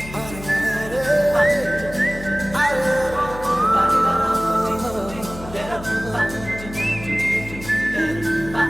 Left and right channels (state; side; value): noise; left; hum, 13 dB below the sound